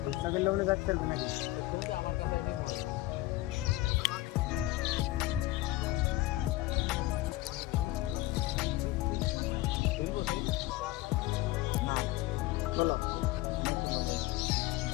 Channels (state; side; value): quieter; right; 17.9 dB